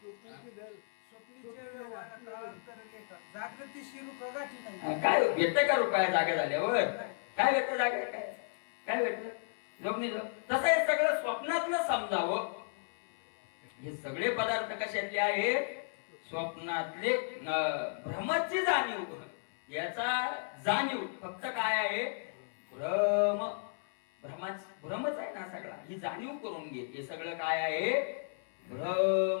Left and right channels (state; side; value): silent; right; 55 dB below the other